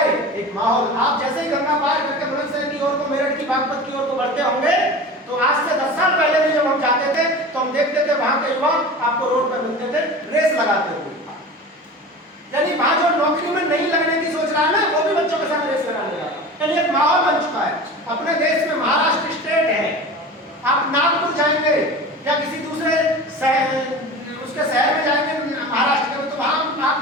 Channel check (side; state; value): both; normal; correlation 0.34